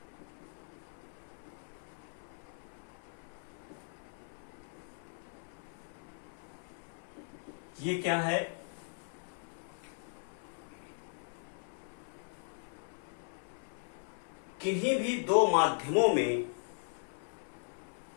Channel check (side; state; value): right; silent; 52 dB below the other